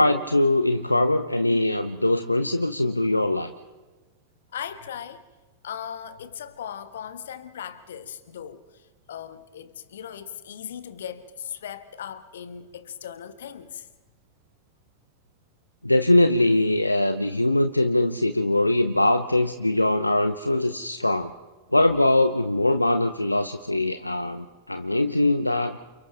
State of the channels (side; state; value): both; inverted; correlation -0.93